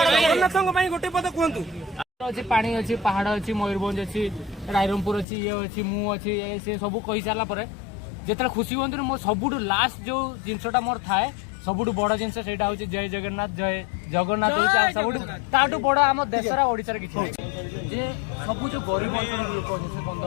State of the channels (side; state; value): right; drops out; at 5.2 s